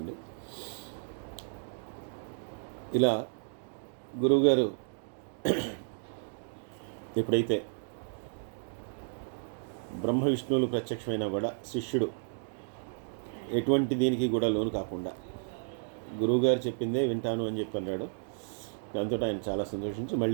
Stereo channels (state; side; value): silent; left; digital silence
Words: ఇలా గురువుగారు ఎప్పుడైతే బ్రహ్మ విష్ణువులు ప్రత్యక్షమైనా కూడా శిష్యుడు ఎటువంటి దీనికి కూడా లోను కాకుండా గురువుగారు చెప్పిందే వింటాను అని చెప్పి అన్నాడు. దాంతో ఆయన చాలా సంతోషించి